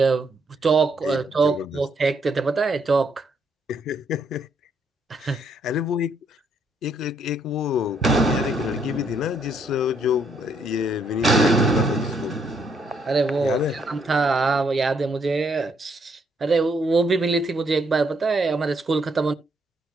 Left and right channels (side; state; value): both; normal; correlation 0.72